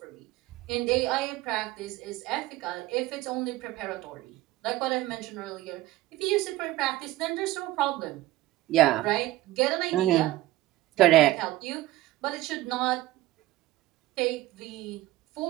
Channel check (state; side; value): quieter; left; 16.6 dB